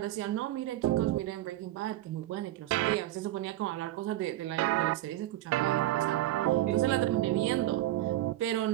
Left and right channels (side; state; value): left; quieter; 14.8 dB